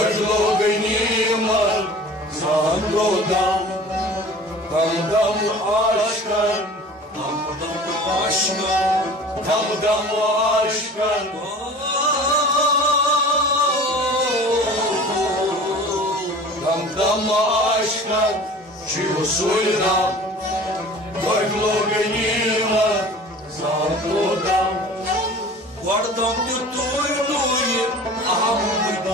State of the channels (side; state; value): both; normal; correlation 0.42